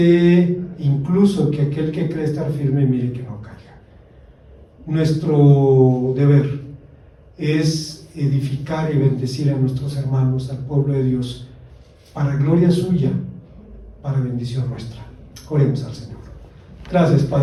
incluso que aquel que cree estar firme, mire que no caiga. Nuestro deber es edificar y bendecir a nuestros hermanos, al pueblo de Dios, para gloria suya, para bendición nuestra. Oremos al Señor. Gracias,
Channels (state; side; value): identical; both; correlation 1.00